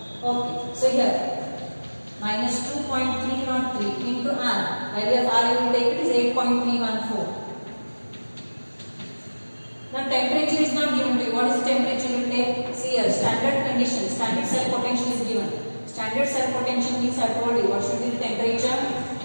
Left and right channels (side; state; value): both; inverted; correlation -1.00